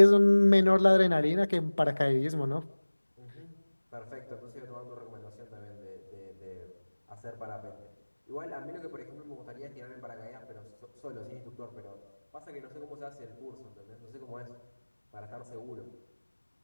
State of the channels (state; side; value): inverted; both; correlation -1.00